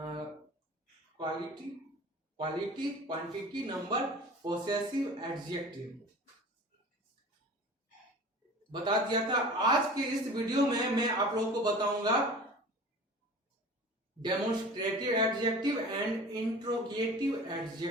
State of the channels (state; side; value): normal; both; correlation 0.40